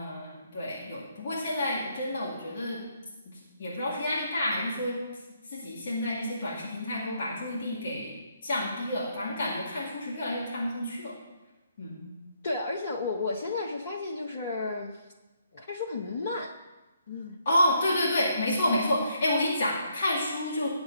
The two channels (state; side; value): inverted; both; correlation -0.73